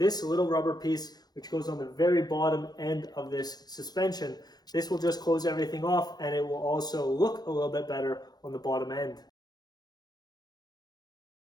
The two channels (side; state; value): right; late; 0.19 ms